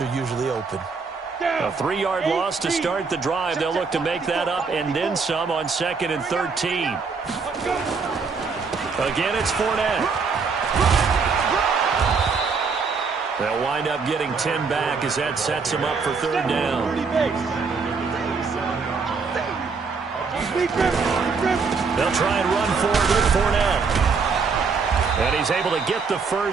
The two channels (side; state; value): left; quieter; 5.0 dB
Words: usually open. A 3-yard loss to start the drive. They'll look to make that up and then some on 2nd and 13. Again, it's Fournette. They'll wind up getting 10 back as that sets him up for 3rd down. They'll try and run forward with Fournette. And he's able to get the